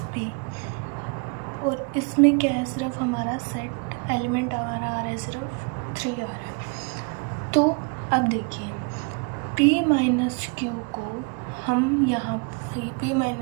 p. और इसमें क्या है, सिर्फ हमारा सेट एलिमेंट हमारा आ रहा है, सिर्फ 3 आ रहा है. तो अब देखिए p माइनस क्यू को हम यहाँ p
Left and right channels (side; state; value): left; quieter; 34.1 dB